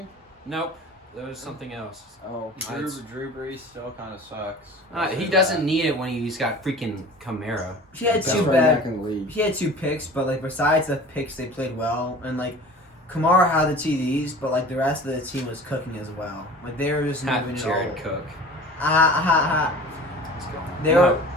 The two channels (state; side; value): normal; both; correlation 0.41